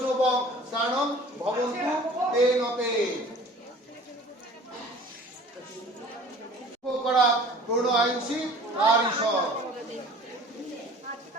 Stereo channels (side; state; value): both; normal; correlation 0.47